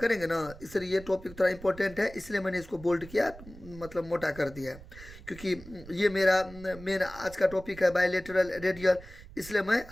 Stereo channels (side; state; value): right; noise; rumble, 17 dB below the sound